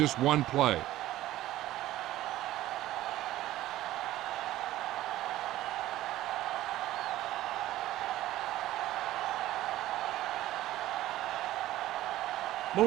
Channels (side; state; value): left; quieter; 15.0 dB